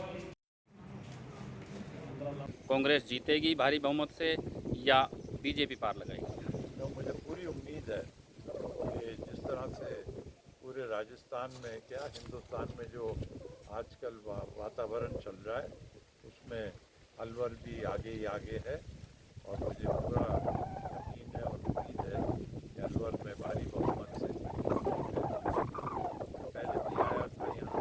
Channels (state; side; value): identical; both; correlation 1.00